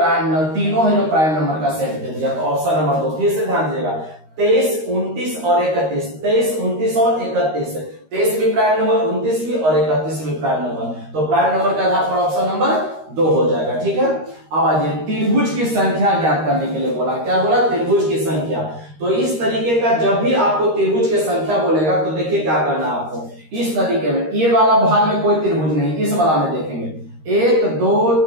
नंबर, तीनों है जो प्राइम नंबर का सेट दे दिया, तो ऑप्शन नंबर 2। फिर से ध्यान दीजिएगा, 23 29 और 31, 23 29 और 31, 23 भी प्राइम नंबर, 29 भी और 31 भी प्राइम नंबर, तो प्राइम नंबर के आधार पर ऑप्शन नंबर 2 हो जाएगा, ठीक है। अब आइए त्रिभुज की संख्या ज्ञात करने के लिए बोला, क्या बोला, त्रिभुज की संख्या। तो इस तरीके का जब भी आपको त्रिभुज की संख्या बोलेगा तो देखिए क्या करना है आपको, इस तरीके में, ये वाला भाग में कोई त्रिभुज नहीं, इस वाला में देखेंगे 1 2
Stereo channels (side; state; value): left; late; 13 ms